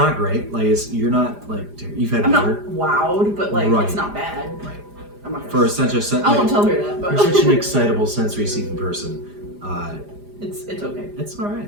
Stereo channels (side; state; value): left; late; 4.9 ms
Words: great. Like you're not like you've had I'm not better. wowed, but like Right. it's not bad. Right. I'm not For gonna such a I won't tell her that, but you're such an excitable, sensory-seeking person. it's okay. It's all right.